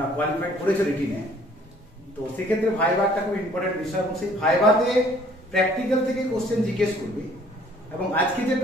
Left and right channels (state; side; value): normal; both; correlation 0.58